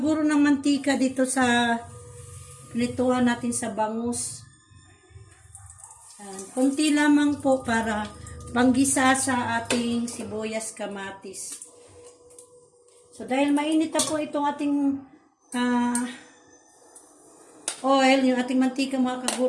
ng mantika dito sa pinituhan natin sa bangus. Kunti lamang po para panggisa sa ating sibuyas, kamatis. So, dahil mainit na po itong ating oil, yung ating mantika mga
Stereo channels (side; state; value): both; identical; correlation 1.00